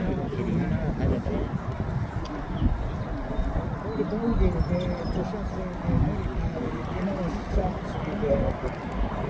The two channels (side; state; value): both; identical; correlation 1.00